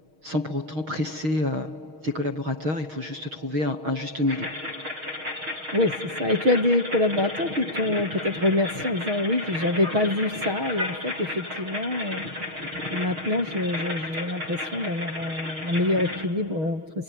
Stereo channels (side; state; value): left; late; 6.4 ms